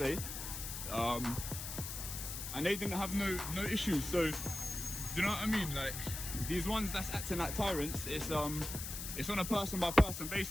and they didn't have no issues. So, do you know what I mean? Like, these ones that's acting like tyrants, it's on a person by person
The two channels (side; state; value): left; noise; hiss, 6 dB below the sound